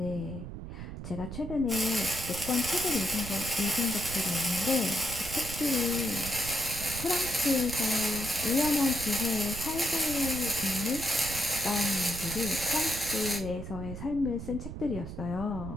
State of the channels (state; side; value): noise; right; rumble, 8 dB below the sound